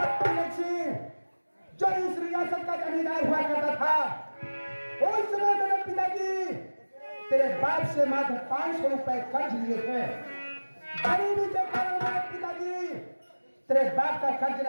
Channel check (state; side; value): inverted; both; correlation -1.00